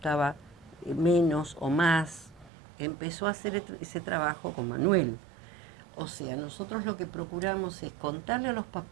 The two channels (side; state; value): left; drops out; at 2.5 s